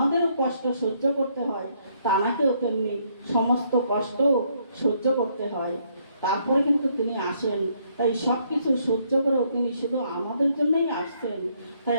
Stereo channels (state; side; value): inverted; both; correlation -0.70